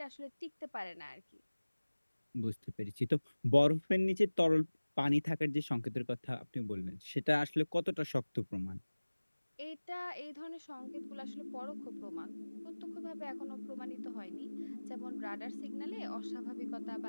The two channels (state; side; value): inverted; both; correlation -1.00